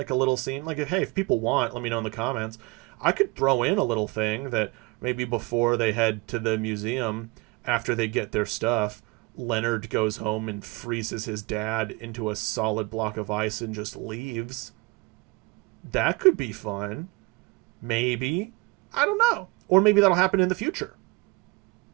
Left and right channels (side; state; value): left; quieter; 25.6 dB